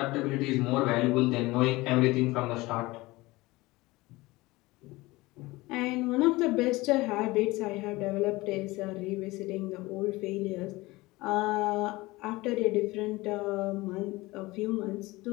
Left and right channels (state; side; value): quieter; right; 20.9 dB